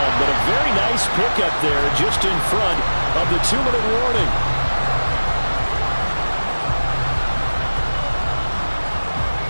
But a very nice pickup there just in front of the 2-minute warning.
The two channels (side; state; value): both; inverted; correlation -1.00